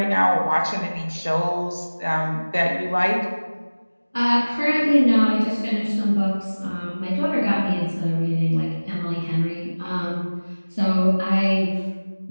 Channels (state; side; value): inverted; both; correlation -1.00